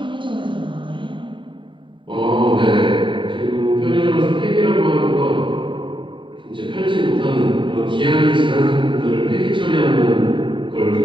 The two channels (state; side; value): late; left; 0.24 ms